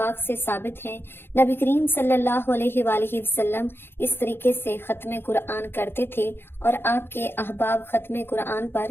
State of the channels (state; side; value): late; right; 0.11 ms